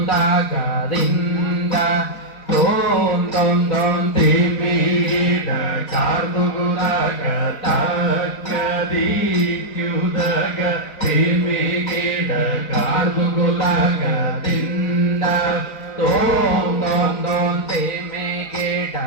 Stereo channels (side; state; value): right; late; 4.4 ms